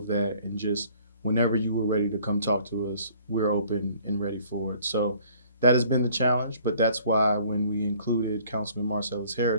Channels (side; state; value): both; inverted; correlation -0.56